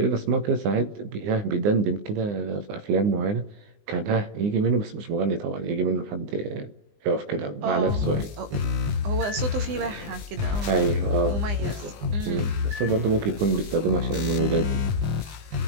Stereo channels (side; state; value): left; late; 20 ms